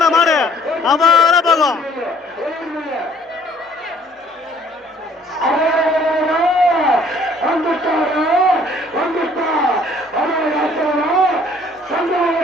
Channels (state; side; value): normal; both; correlation 0.59